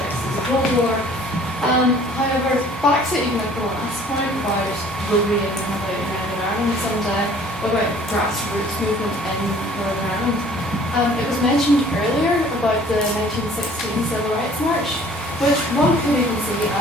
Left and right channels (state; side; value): normal; both; correlation 0.53